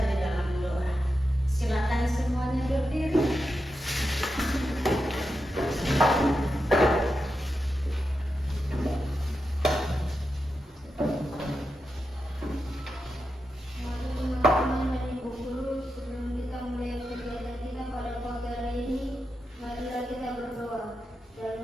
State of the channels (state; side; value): normal; both; correlation 0.88